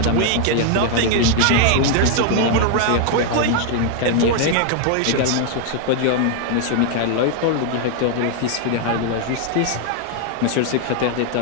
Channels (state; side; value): different; both; correlation 0.00